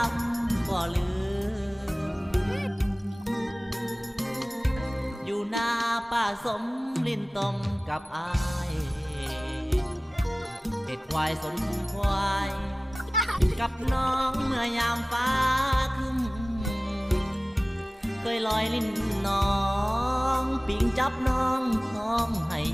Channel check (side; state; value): both; normal; correlation 0.97